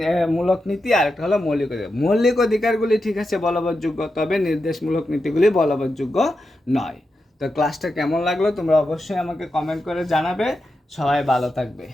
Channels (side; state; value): both; normal; correlation 0.88